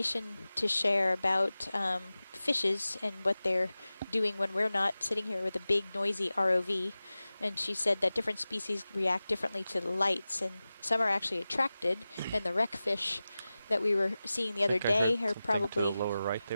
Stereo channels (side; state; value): both; inverted; correlation -0.96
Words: to share about fishes and what they're doing when we're not sitting here with a big noisy ROV. And she said that different species react differently to the lights, and some are actually attracted, and the wreck fish that we were seeing the other day are probably